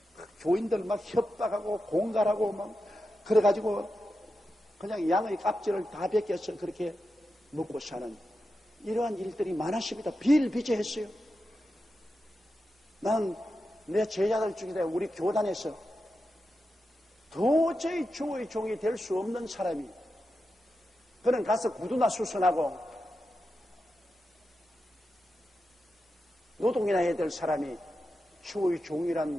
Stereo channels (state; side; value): normal; both; correlation 0.89